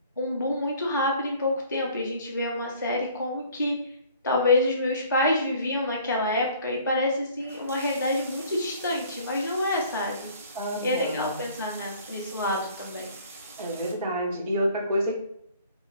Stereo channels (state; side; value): inverted; both; correlation -0.53